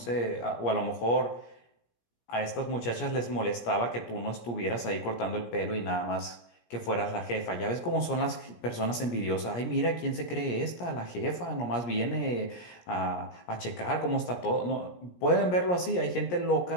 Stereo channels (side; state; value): right; late; 17 ms